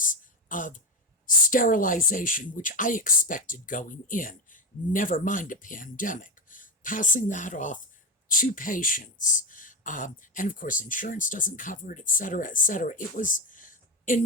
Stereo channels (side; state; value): both; normal; correlation 0.13